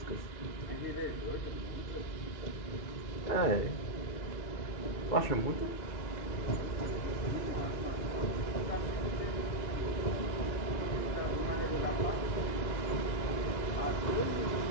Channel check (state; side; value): late; right; 2.0 ms